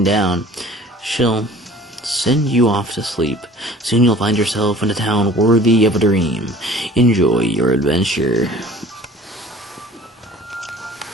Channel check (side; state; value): both; normal; correlation 0.48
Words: down, she'll send you off to sleep. Soon you'll find yourself in a town worthy of a dream. Enjoy your adventure.